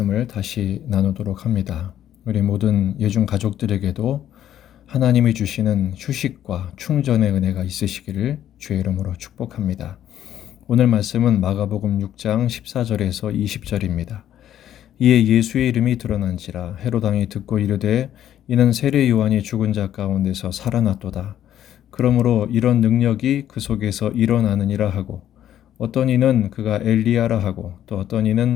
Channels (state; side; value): quieter; right; 11.2 dB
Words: 다시 나누도록 합니다. 우리 모든 예중 가족들에게도 하나님이 주시는 휴식과 충전의 은혜가 있으시기를 주의 이름으로 축복합니다. 오늘 말씀은 마가복음 6장 14절에서 20절입니다. 이에 예수의 이름이 드러난지라 헤롯 왕이 듣고 이르되 이는 세례 요한이 죽은 자 가운데서 살아났도다. 그러므로 이런 능력이 그 속에서 일어나느니라 하고 어떤 이는 그가 엘리야라 하고 또 어떤